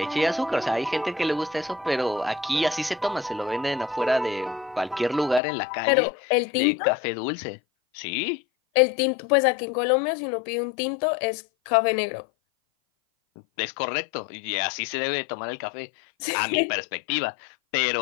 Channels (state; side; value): drops out; right; at 5.4 s